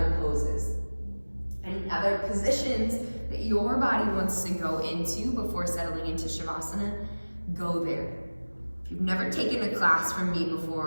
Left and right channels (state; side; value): inverted; both; correlation -1.00